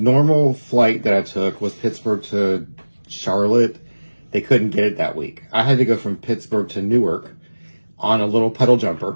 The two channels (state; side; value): inverted; both; correlation -1.00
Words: flight that I took was Pittsburgh to Charlotte. They couldn't get it that week. I had to go from Pittsburgh to Newark on a little pedal